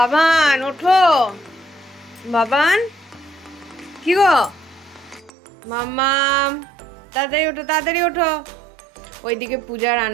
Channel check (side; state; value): left; drops out; at 5.3 s